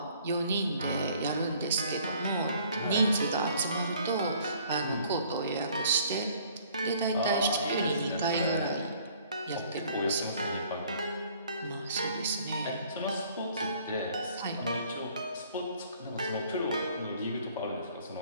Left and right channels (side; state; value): both; inverted; correlation -0.57